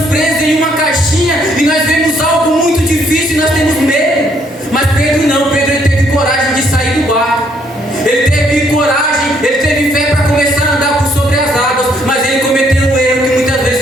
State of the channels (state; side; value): normal; both; correlation 0.68